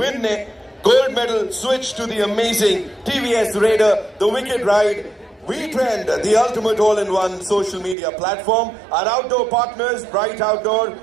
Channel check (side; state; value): left; drops out; at 8.0 s